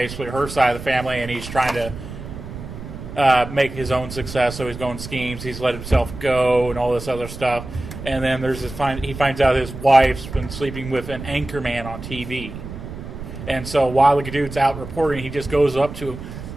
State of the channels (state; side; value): noise; right; rumble, 11 dB below the sound